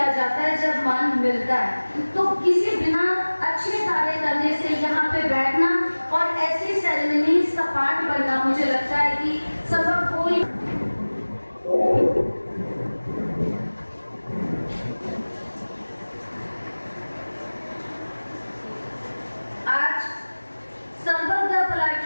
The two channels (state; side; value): inverted; both; correlation -1.00